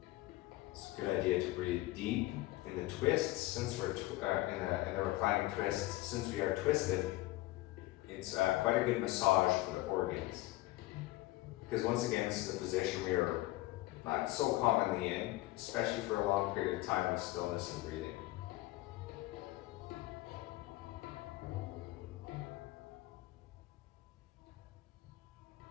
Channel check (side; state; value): right; quieter; 18.2 dB